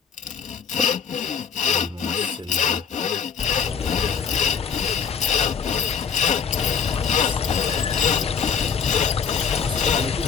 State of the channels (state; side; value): quieter; right; 6.7 dB